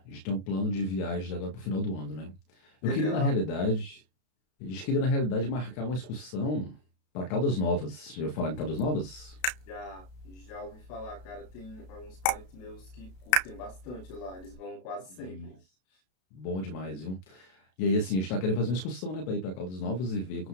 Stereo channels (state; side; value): late; right; 32 ms